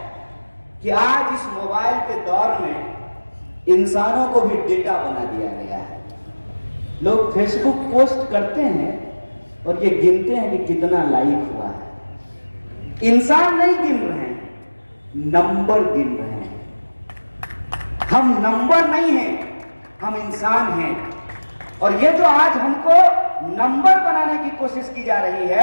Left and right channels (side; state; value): both; inverted; correlation -1.00